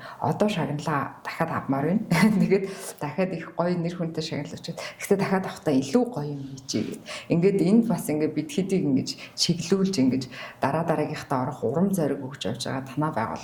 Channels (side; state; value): both; identical; correlation 1.00